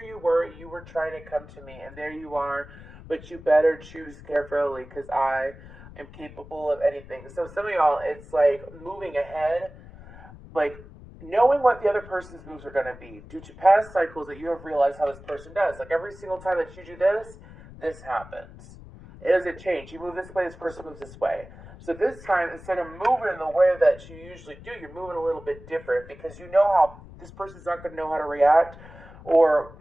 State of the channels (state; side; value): noise; left; rumble, 18 dB below the sound